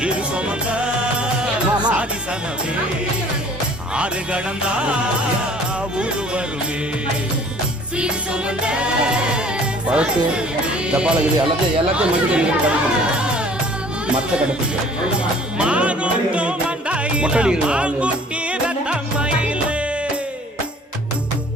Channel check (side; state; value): both; normal; correlation 0.52